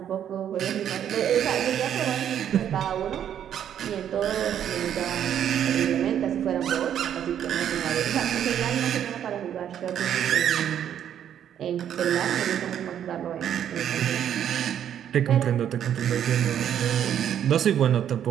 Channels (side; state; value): left; quieter; 9.7 dB